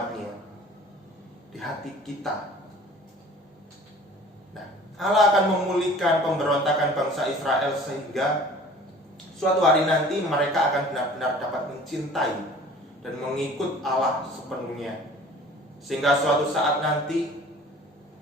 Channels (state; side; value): normal; both; correlation 0.47